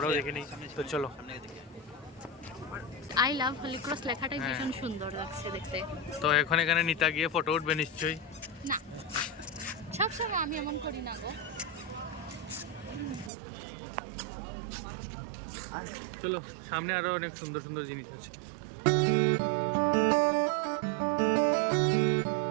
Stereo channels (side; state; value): left; drops out; at 13.3 s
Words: দেখে নিই তো চলো আই লাভ হলি ক্রস লেখাটাই হ্যাঁ। ভীষণ সুন্দর লাগছে দেখতে। তো এখন এখানে নিতা গিয়ে ফটো উঠবে নিশ্চয়ই না সবসময় আমি এমন করি না গো। চলো সামনে আরো অনেক সুন্দর সুন্দর জিনিস আছে